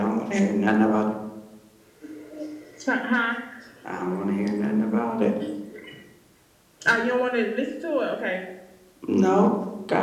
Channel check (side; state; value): both; identical; correlation 1.00